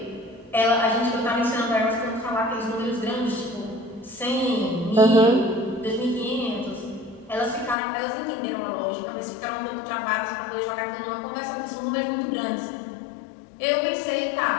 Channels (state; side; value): drops out; right; at 7.8 s